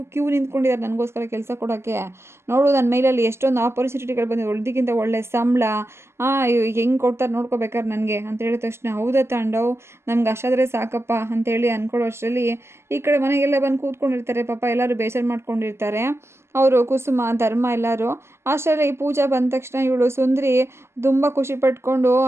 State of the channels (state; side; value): late; left; 0.12 ms